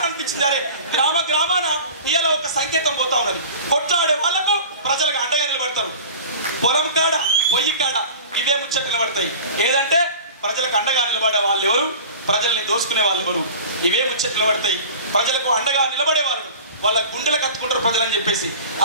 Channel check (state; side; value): inverted; both; correlation -0.39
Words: అనిపించింది. అరే గ్రామాన ఇలా ఒక సంకేతం పోతా ఉన్నది. కొట్లాడే వాళ్ళకు ప్రజలకు అండగా నిలబడతారు. పొలం కాడ, పొయ్యి కాడ ఇవే ముచ్చట్లు నిలబడతాయి. ఏదంటే ప్రజలకు అండగా నిలబడే వాళ్ళు ఎవరు, ప్రజల్ని దోసుకునే వాళ్ళు ఎవరు, ఇవే ముచ్చట్లు నిలబడతాయి. ప్రజలకు అండగా నిలబడే వాళ్ళు వాళ్ళ గుండెలకు కత్తుకుంటారు ప్రజలని చెప్పేసి